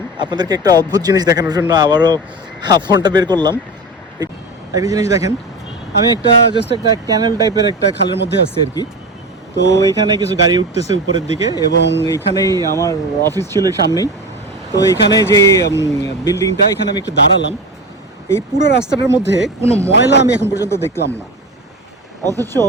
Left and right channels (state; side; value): normal; both; correlation 0.26